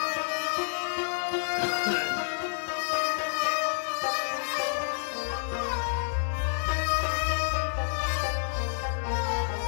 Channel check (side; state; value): right; silent; digital silence